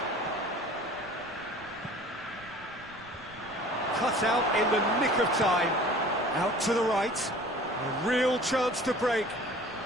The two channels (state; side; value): noise; right; rumble, 23 dB below the sound